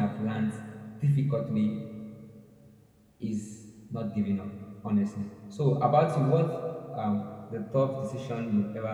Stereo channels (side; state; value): both; identical; correlation 1.00